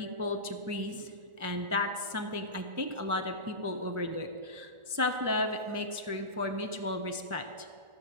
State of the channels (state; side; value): late; left; 1.4 ms